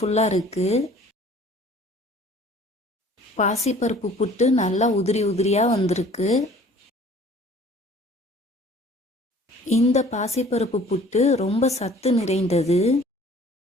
இருக்கு. பாசிப்பருப்பு புட்டு நல்லா உதிரி உதிரியாக வந்திருக்கு. இந்த பாசிப்பருப்பு புட்டு ரொம்ப சத்து நிறைந்தது.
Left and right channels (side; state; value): both; normal; correlation 0.51